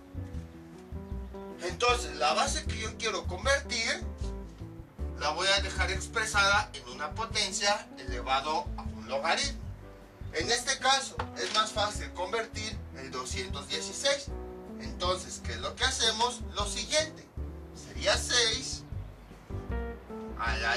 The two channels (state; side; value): identical; both; correlation 1.00